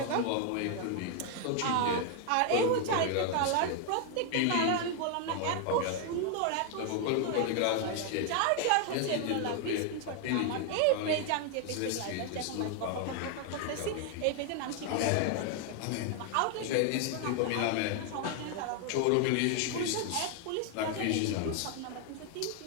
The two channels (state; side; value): different; both; correlation 0.00